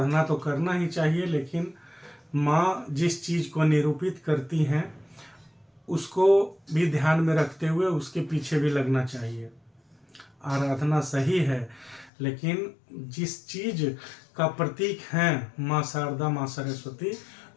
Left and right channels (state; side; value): drops out; right; at 12.1 s